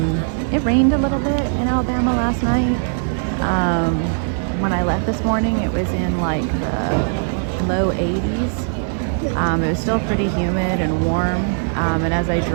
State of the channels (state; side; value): silent; left; digital silence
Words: it rained a little bit in Alabama last night. When I left this morning, it was in like the low 80s. It was still pretty humid and warm. And as I